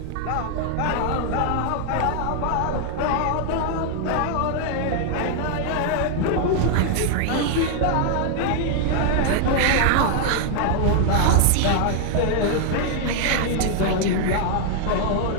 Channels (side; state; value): both; different; correlation 0.00